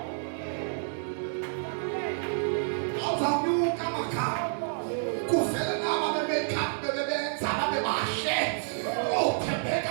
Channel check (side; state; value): left; silent; digital silence